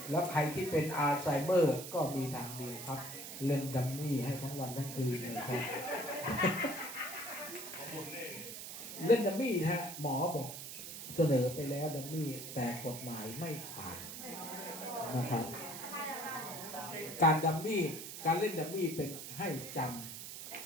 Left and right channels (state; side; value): noise; right; hiss, 9 dB below the sound